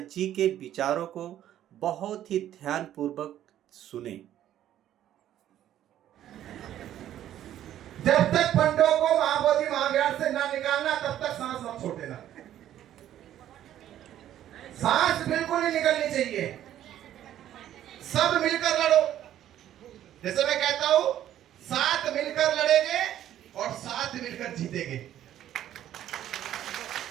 जी के विचारों को बहुत ही ध्यानपूर्वक सुने। जब तक पंडों को महाबोधि महाविहार से ना निकालना तब तक सांस मत छोड़ देना। सांस बिल्कुल नहीं निकलनी चाहिए। सब मिलकर लड़ो। जैसे मैं कहता हूं, साथ मिलकर लड़ेंगे और साथ मिलकर जीतेंगे।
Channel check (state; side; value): quieter; left; 11.8 dB